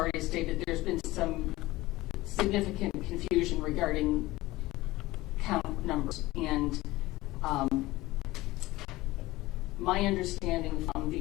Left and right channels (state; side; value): quieter; right; 18.7 dB